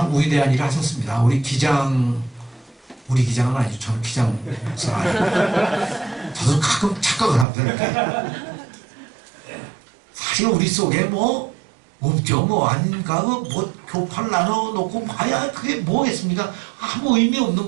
위대한 일을 하셨습니다. 우리 기장은 아니죠. 저는 기장 목사가 아니고 저도 가끔 착각을 합니다. 이렇게. 사실 우리 속에 뭐 없죠. 뭐 아닌가 뭐 교파를 나눠놓고 봐야 그게 뭐겠습니까? 아무 의미 없는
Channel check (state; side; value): drops out; left; at 7.5 s